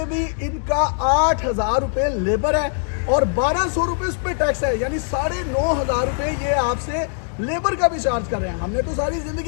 भी इनका 8 हज़ार रुपये लेबर है और 1200 रुपये उस पर टैक्स है। यानी 9.5 हज़ार रुपये ये आपसे लेबर का भी चार्ज कर रहे हैं। हमने तो सारी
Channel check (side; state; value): right; silent; 65 dB below the other